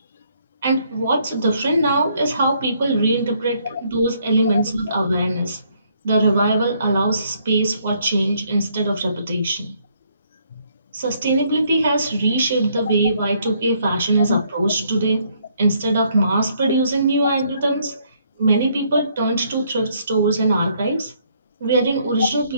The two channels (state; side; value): inverted; both; correlation -0.69